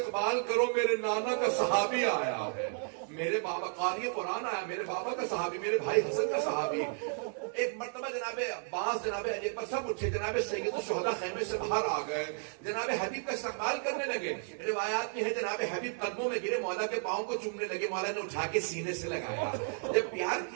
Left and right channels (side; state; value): left; silent; 56 dB below the other